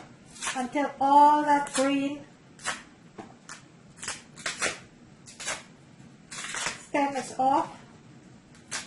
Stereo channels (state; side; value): identical; both; correlation 1.00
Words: until all that green stem is off.